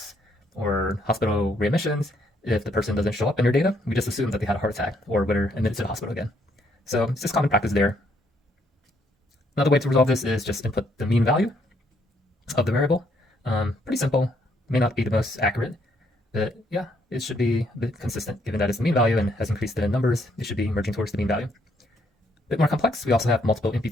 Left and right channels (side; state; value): both; normal; correlation 0.70